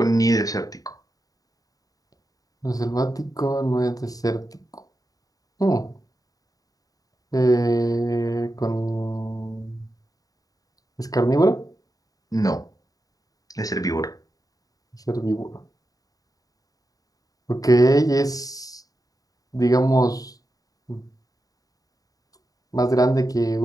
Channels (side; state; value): right; late; 0.18 ms